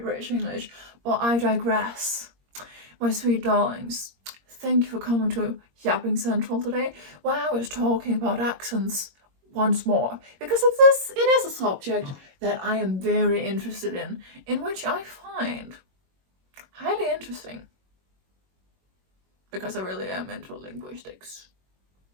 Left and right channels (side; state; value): left; late; 21 ms